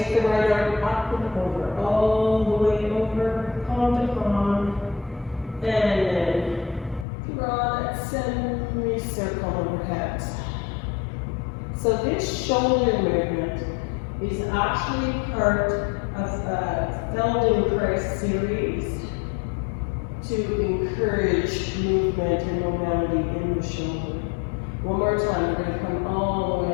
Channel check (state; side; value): drops out; right; at 7.1 s